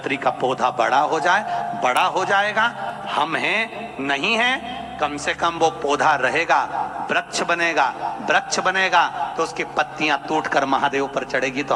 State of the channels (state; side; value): identical; both; correlation 1.00